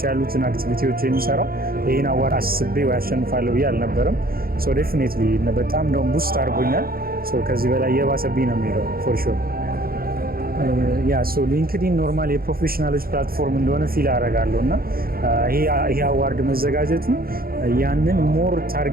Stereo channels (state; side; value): late; left; 0.43 ms